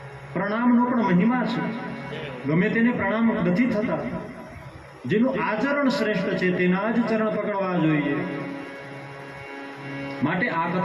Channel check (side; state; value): both; identical; correlation 1.00